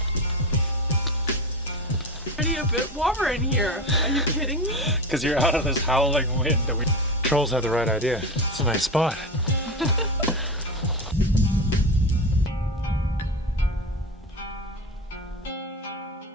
Already a bit warmer in here. Are you kidding me? Because you're out of this howling wind. Trolls had the right idea. It's a nice spot.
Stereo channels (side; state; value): both; normal; correlation 0.23